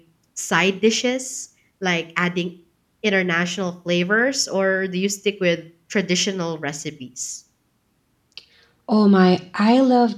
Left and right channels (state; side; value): identical; both; correlation 1.00